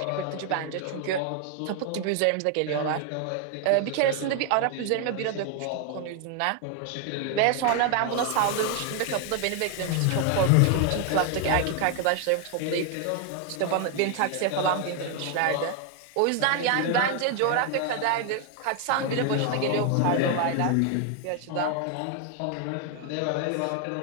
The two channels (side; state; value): both; different; correlation 0.01